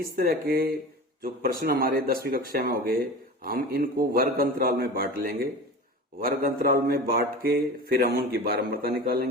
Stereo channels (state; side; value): normal; both; correlation 0.33